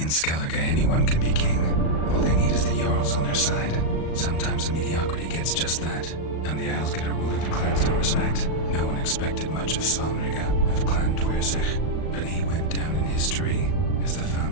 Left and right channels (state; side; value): late; right; 37 ms